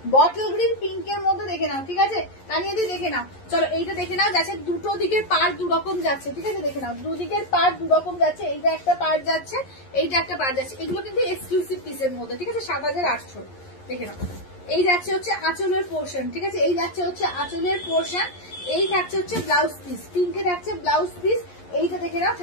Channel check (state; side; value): late; right; 11 ms